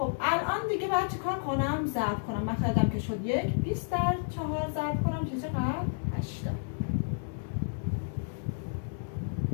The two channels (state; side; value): silent; right; digital silence